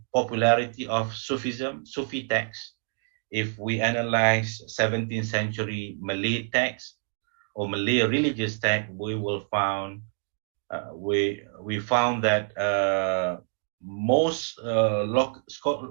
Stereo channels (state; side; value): silent; left; 60 dB below the other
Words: popularity of Sufism, Sufi texts. If we analyze 17th century Malay text or Malay religious text, we will found we found that most